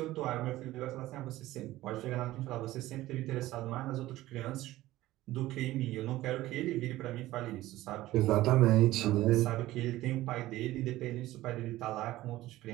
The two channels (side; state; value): left; quieter; 16.3 dB